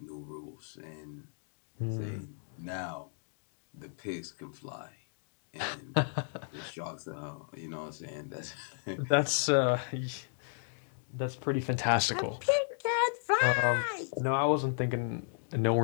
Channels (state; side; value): silent; right; digital silence